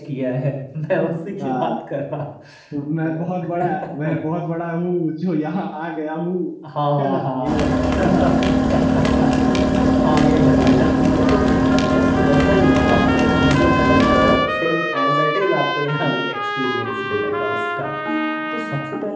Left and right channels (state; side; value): identical; both; correlation 1.00